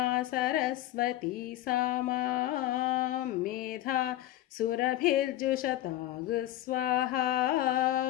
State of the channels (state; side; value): quieter; right; 14.5 dB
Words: సరస్వతీ సామా మేధా సురభిర్జుషతాగు స్వాహా.